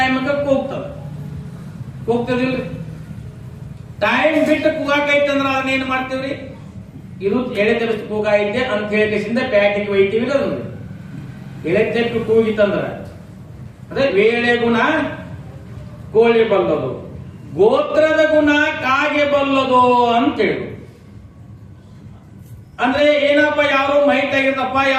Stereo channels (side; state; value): both; identical; correlation 1.00